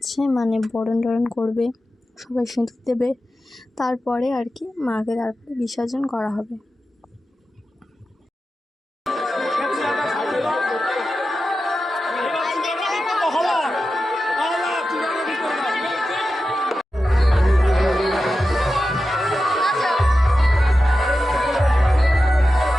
বরণ টরণ করবে, সবাই সিঁদুর দেবে, তারপরে মাকে তারপরে বিসর্জন করা হবে।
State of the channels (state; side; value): normal; both; correlation 0.92